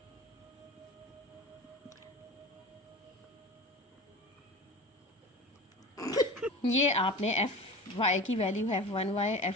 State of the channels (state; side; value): normal; both; correlation 0.34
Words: ये आपने एफ वाई की वैल्यू है F1y